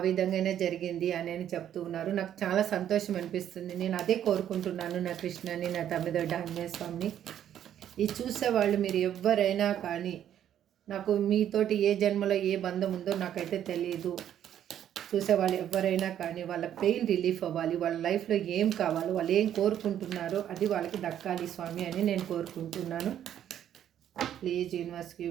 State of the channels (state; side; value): quieter; left; 10.4 dB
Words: విధంగానే జరిగింది అని చెప్తూ ఉన్నారు. నాకు చాలా సంతోషం అనిపిస్తుంది. నేను అదే కోరుకుంటున్నాను నా కృష్ణని నా తమ్మిదొడ్డ ఆంజనేయ స్వామిని. ఇది చూసేవాళ్ళు మీరు ఎవరైనా కానీ, నాకు మీతోటి ఏ జన్మలో ఏ బంధం ఉందో నాకైతే తెలియదు. చూసేవాళ్ళు ఎవరైనా కానీ వాళ్ళ పెయిన్ రిలీఫ్ అవ్వాలి, వాళ్ళ లైఫ్లో ఏం కావాలో వాళ్ళు ఏం కోరుకుంటున్నారో అది వాళ్ళకి దక్కాలి స్వామి అని నేను కోరుకుంటున్నాను. Please universe